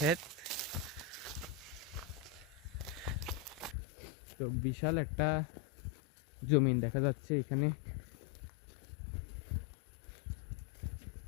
তো বিশাল একটা জমিন দেখা যাচ্ছে এখানে।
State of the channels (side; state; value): right; drops out; at 3.8 s